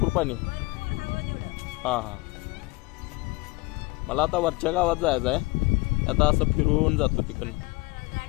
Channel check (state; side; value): quieter; right; 24.2 dB